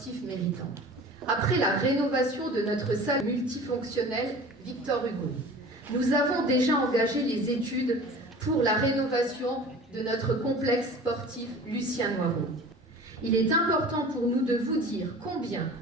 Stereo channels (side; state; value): both; normal; correlation 0.41